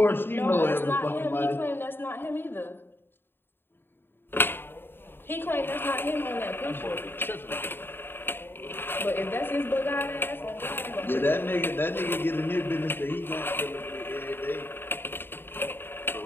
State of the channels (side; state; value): right; late; 0.10 ms